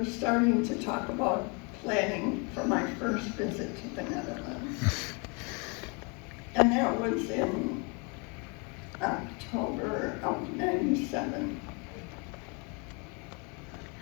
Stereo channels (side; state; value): right; quieter; 32.5 dB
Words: starting to talk about planning for my first visit to the Netherlands. And that was in October of '97.